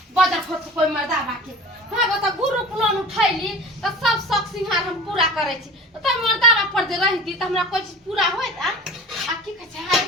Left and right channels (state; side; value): normal; both; correlation 0.39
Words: बजर खसक कोई मर्दा बाके हाँ बता ग्रुप लोन उठैली तो सब शौक सिंहार हम पूरा करे छी, तो मर्दा पर जे रहती तो हमरा कोई चीज पूरा होत आ की कह छै